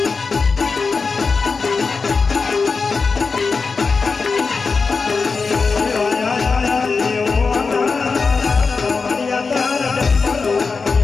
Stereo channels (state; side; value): quieter; right; 4.6 dB